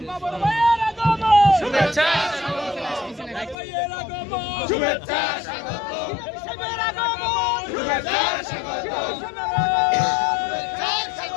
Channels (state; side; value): drops out; right; at 3.6 s